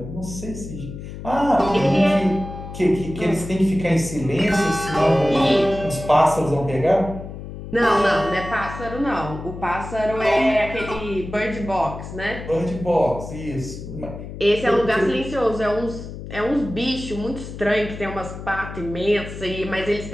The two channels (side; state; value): left; noise; hum, 10 dB below the sound